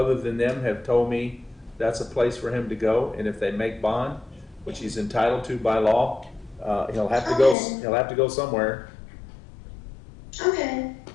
than them have told me that's a place for him to go. And if they make bond, which he's entitled to by law, he'll have to go. Okay. He'll have to go somewhere. Okay.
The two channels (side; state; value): right; drops out; at 7.6 s